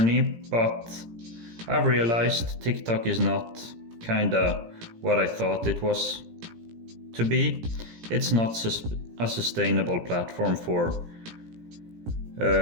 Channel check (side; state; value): left; late; 17 ms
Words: but I've realized TikTok is not kinda what I thought it was to be. It's not a sustainable platform for